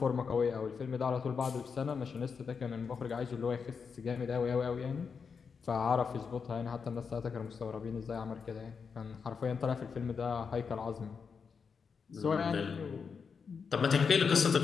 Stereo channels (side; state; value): right; quieter; 5.8 dB